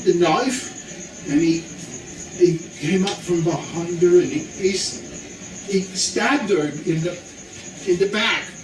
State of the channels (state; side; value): identical; both; correlation 1.00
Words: the knife, and he came up from behind her, and he stabbed her in the back,